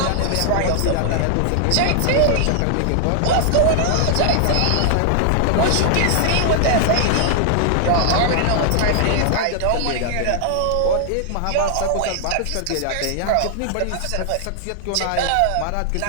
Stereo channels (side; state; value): both; different; correlation 0.00